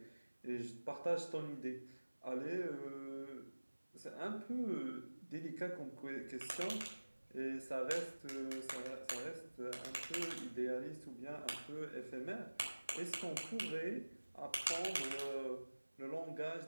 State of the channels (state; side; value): inverted; both; correlation -1.00